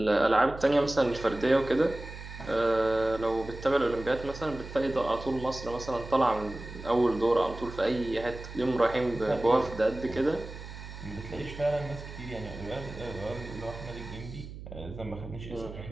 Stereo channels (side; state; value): right; noise; hum, 12 dB below the sound